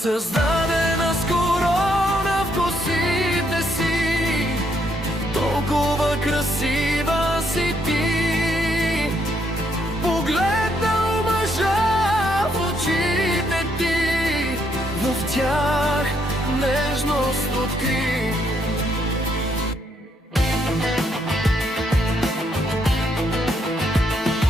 с корона в косите си, толкова красива си ти. Погледнал мъжа в очите ти, в тях нежност откри.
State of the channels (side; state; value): both; normal; correlation 0.73